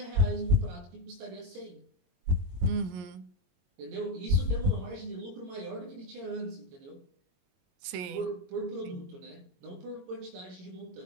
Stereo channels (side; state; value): left; late; 22 ms